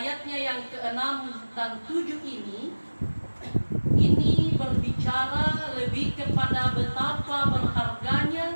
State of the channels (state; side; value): inverted; both; correlation -1.00